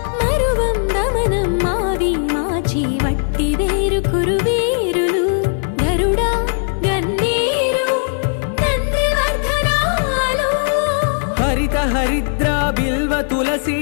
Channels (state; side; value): silent; right; 57 dB below the other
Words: వట్టి వేరు కురువేరులు గరుడా గన్నేరు నందివర్ధనాలు హరిత హరిద్ర బిల్వ